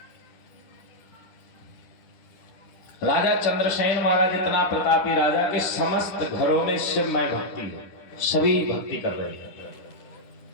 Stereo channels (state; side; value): late; right; 10 ms